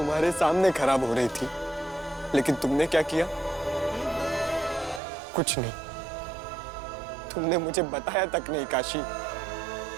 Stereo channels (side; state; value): left; drops out; at 5.0 s